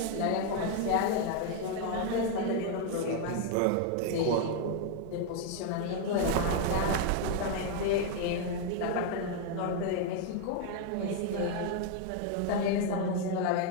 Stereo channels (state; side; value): different; both; correlation 0.00